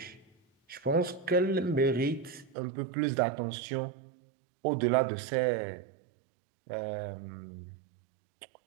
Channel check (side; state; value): left; drops out; at 2.6 s